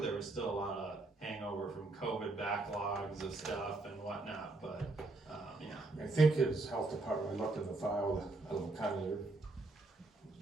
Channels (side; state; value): left; quieter; 3.1 dB